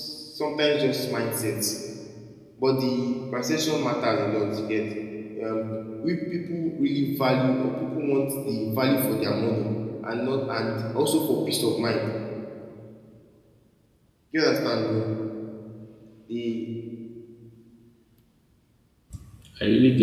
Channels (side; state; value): both; identical; correlation 1.00